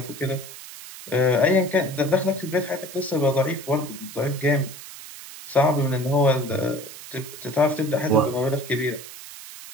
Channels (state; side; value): noise; right; hiss, 14 dB below the sound